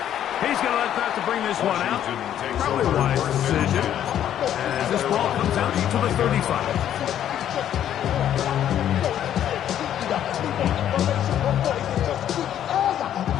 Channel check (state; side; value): quieter; right; 10.6 dB